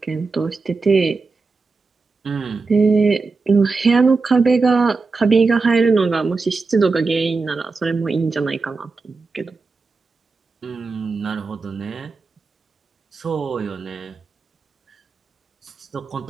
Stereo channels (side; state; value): left; quieter; 4.1 dB